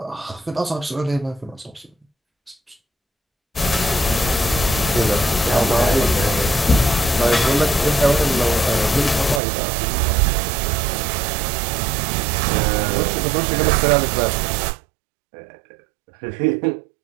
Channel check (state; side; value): drops out; left; at 9.4 s